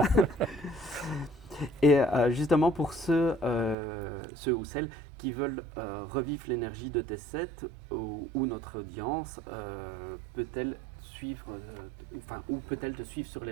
Et justement, pour ceux ou celles qui veulent revivre l'énergie de tes sets, ou notre audience peut-elle suivre, ou peut-elle te suivre sur les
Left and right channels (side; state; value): left; drops out; at 3.8 s